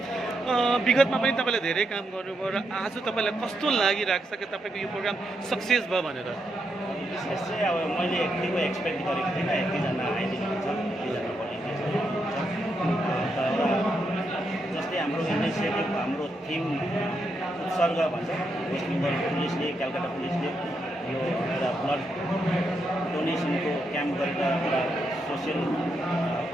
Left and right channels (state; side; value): normal; both; correlation 0.81